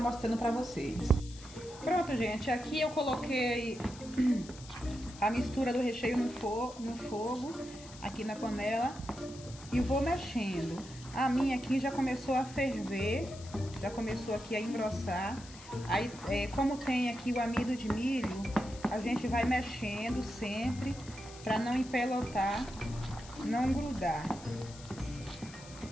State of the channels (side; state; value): left; noise; hiss, 18 dB below the sound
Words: para vocês. Pronto, gente. Aqui eu coloquei a mistura do recheio no fogo, aqui na panela. E vou mexendo. A minha aqui já começou a ferver, já começou aqui a engrossar. Aí, como tem aqui o amido de milho, a gente vai mexendo sempre para não empelotar, não grudar.